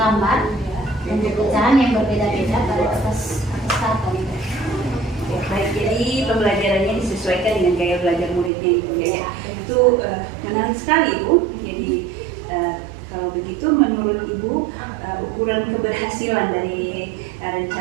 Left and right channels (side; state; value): left; drops out; at 8.5 s